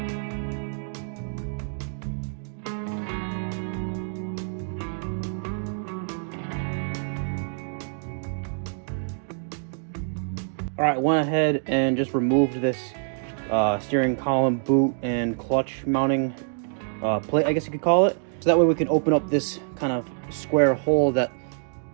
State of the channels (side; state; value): left; silent; digital silence